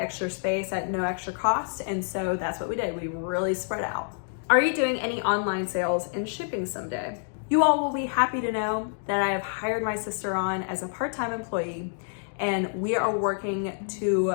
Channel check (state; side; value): silent; right; digital silence